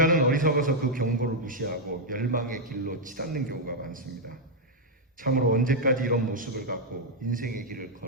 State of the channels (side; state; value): both; normal; correlation -0.02